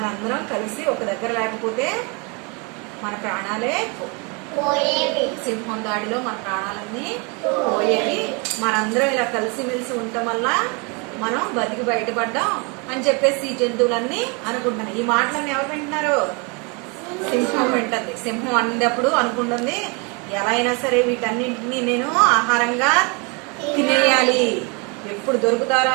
కలిసి ఒక దగ్గర లేకపోతే మన ప్రాణాలే సింహం దాడిలో మన ప్రాణాలన్నీ పోయేవి. మనందరం ఇలా కలిసిమెలిసి ఉండటం వల్ల మనం బతికి బయటపడ్డాం అని చెప్పేసి ఈ జంతువులన్నీ అనుకుంటున్నాయి. ఈ మాటలన్నీ ఎవరు వింటున్నారు? సింహం వింటుంది. సింహం అన్నప్పుడు అనుకుంటుంది, ఎలా అయినా సరే వీటన్నింటినీ నేను ఆహారంగా తినేయాలి, ఎప్పుడు దొరుకుతారా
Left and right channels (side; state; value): left; quieter; 31.5 dB